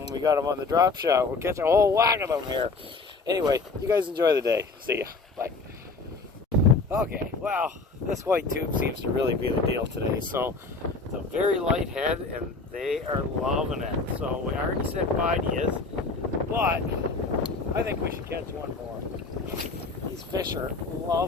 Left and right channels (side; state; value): right; quieter; 4.0 dB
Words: we got them on the drop shot, we'll catch a whole whack of them here. Anyway, you guys enjoy the day. See ya. Bye. Okay, well, this white tube seems to really be the deal today. So it's a very light head, and they are loving it. So we already said bye to you, but I think we should catch one more. These fish are